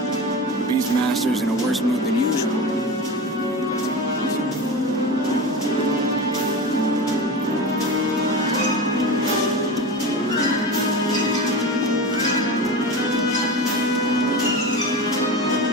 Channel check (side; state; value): both; normal; correlation 0.27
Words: Beastmaster's in a worse mood than usual.